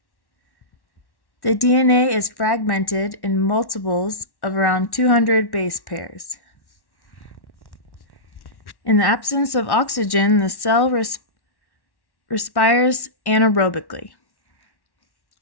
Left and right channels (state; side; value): late; right; 1.1 ms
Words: The DNA is fragmented in multiples of around 200 base pairs. In the absence of oxygen, the cell respires anaerobically.